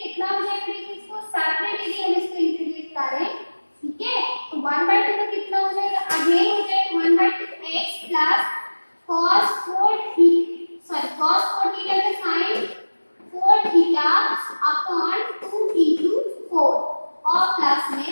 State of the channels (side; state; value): both; inverted; correlation -1.00